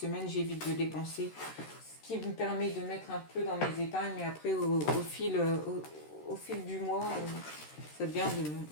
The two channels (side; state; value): right; late; 13 ms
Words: j'évite de dépenser, ce qui me permet de mettre un peu dans mes épargnes. Mais après, au fil du mois, ça devient une